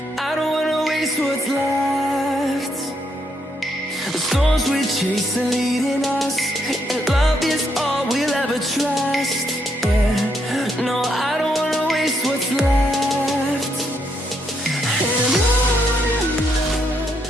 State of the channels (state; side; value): normal; both; correlation 0.76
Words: I don't wanna waste what's left. The storms we chase are leading us, and love is all we'll ever trust.